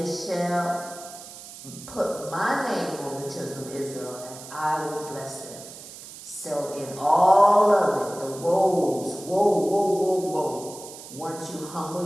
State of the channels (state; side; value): noise; right; hiss, 15 dB below the sound